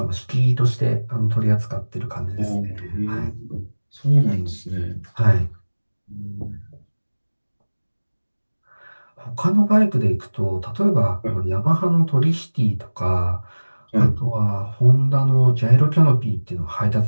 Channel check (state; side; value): inverted; both; correlation -1.00